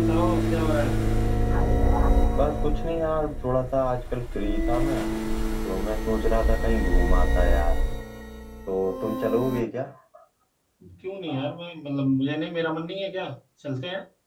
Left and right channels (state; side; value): identical; both; correlation 1.00